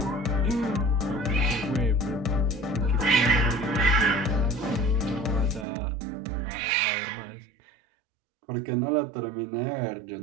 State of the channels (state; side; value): drops out; left; at 5.7 s